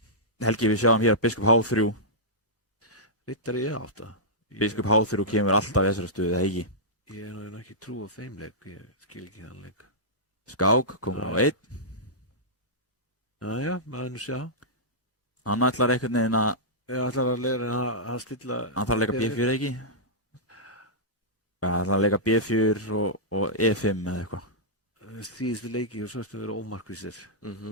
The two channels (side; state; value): both; normal; correlation -0.13